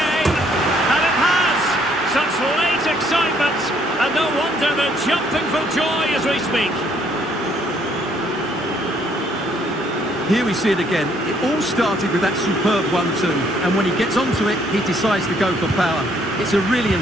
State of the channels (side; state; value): both; normal; correlation 0.66